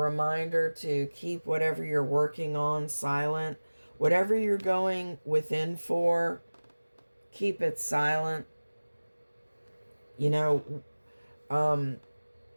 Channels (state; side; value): inverted; both; correlation -1.00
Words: to keep whatever you're working on silent. Whatever you're going within for, keep it silent. You know,